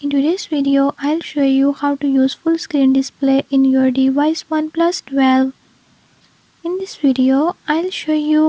in today's video I'll show you how to use full screen display in your device OnePlus 12. In this video I'll show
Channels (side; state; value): both; identical; correlation 1.00